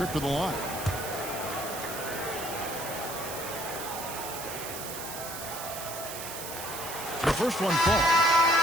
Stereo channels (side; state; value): right; noise; hiss, 8 dB below the sound